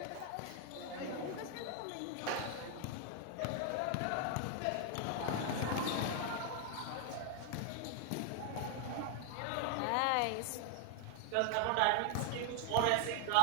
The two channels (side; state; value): both; different; correlation 0.00